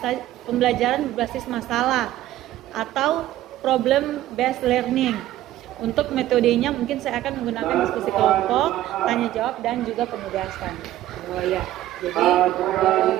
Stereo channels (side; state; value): left; quieter; 14.1 dB